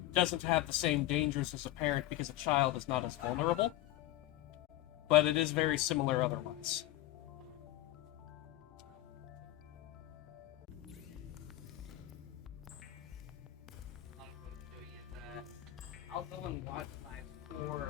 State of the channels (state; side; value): quieter; right; 15.3 dB